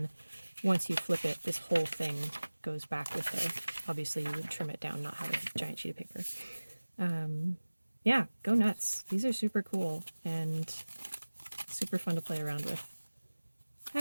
once you flip it, this whole thing goes back with it. Obviously, you would trim it down, not have a giant sheet of paper. yeah, go nuts. These are super cool and super fun to play around with.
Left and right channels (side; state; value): both; inverted; correlation -1.00